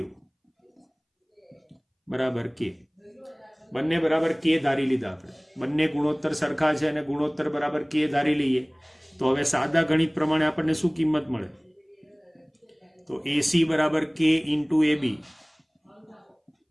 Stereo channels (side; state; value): both; identical; correlation 1.00